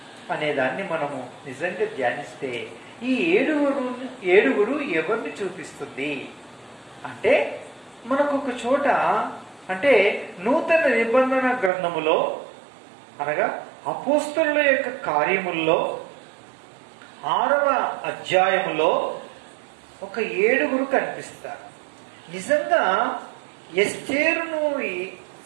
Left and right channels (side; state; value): left; drops out; at 11.7 s